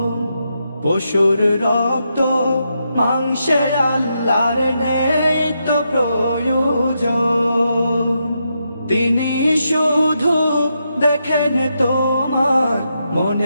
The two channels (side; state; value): both; inverted; correlation -0.83